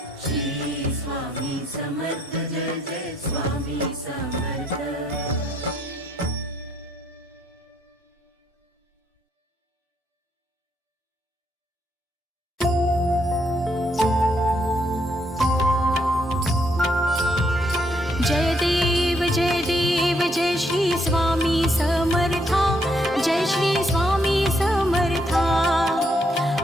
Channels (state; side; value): normal; both; correlation 0.73